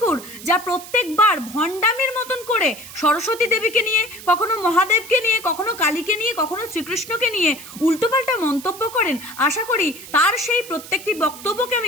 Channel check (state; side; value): noise; right; hiss, 15 dB below the sound